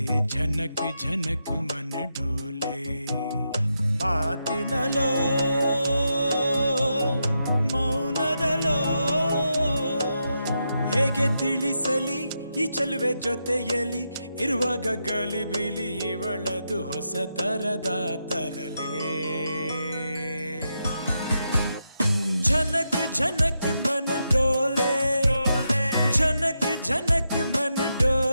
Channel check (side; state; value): both; inverted; correlation -0.85